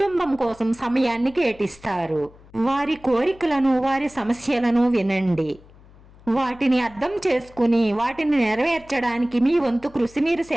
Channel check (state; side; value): noise; left; hum, 24 dB below the sound